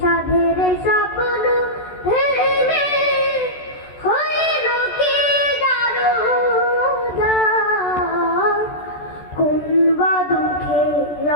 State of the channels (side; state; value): right; late; 14 ms